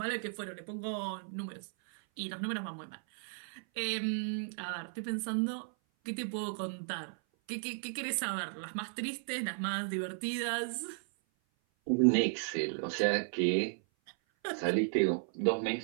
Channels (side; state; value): left; silent; 54 dB below the other